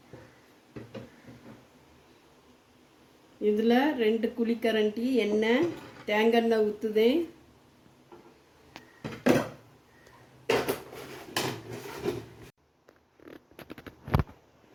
இதில் 2 குழிக்கரண்டி எண்ணெய், தேங்காய் ஊற்றுதேன்.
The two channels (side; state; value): both; identical; correlation 1.00